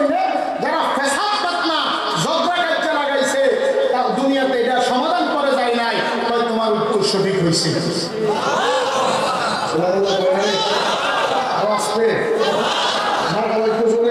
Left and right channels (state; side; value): identical; both; correlation 1.00